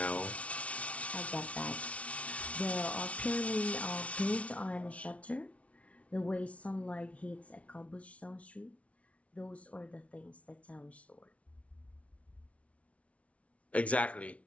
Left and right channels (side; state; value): right; late; 0.064 ms